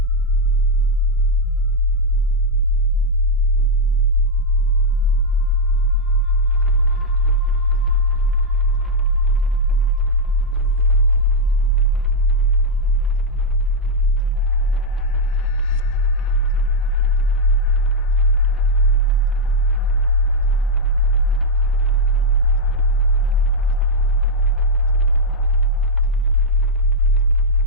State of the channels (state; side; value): normal; both; correlation -0.01